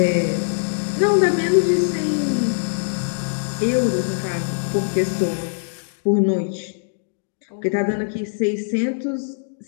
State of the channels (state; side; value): silent; right; digital silence